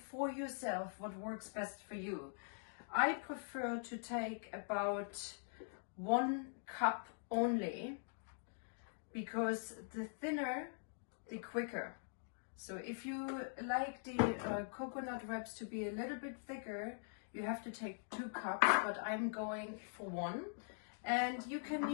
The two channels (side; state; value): right; silent; digital silence